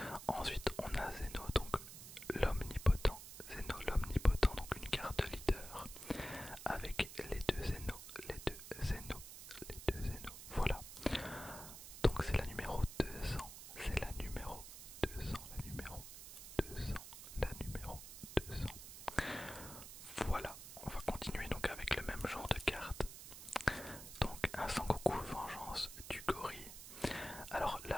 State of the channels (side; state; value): right; noise; hiss, 12 dB below the sound